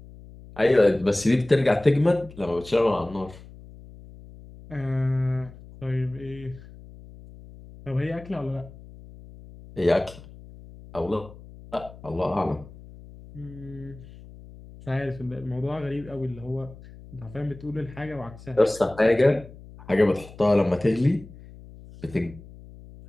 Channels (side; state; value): left; noise; hum, 19 dB below the sound